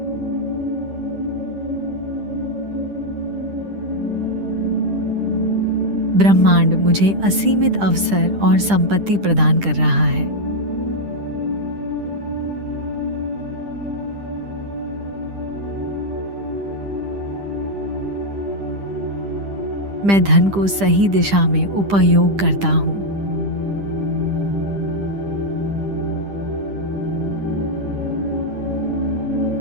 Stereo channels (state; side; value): late; left; 10 ms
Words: ब्रह्मांड मुझे असीमित अवसर और संपत्ति प्रदान कर रहा है। मैं धन को सही दिशा में उपयोग करता हूँ।